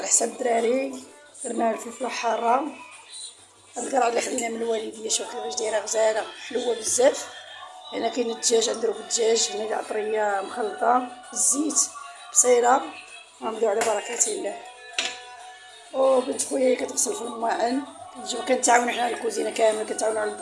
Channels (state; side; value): identical; both; correlation 1.00